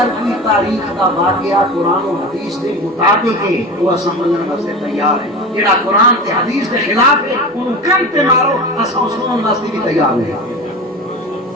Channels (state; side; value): normal; both; correlation 0.29